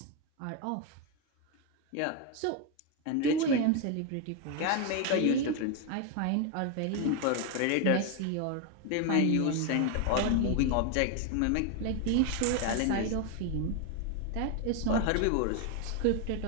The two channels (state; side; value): different; both; correlation 0.02